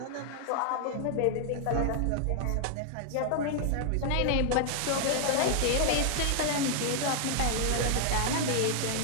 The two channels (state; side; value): different; both; correlation 0.00